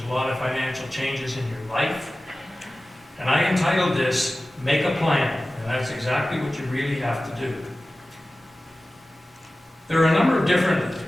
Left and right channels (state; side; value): normal; both; correlation 0.96